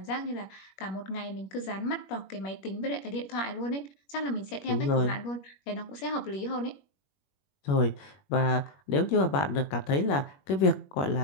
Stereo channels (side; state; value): right; late; 21 ms